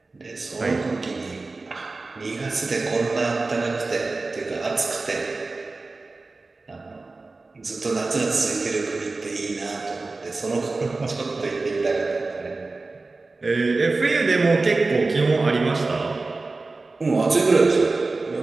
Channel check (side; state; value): left; quieter; 3.5 dB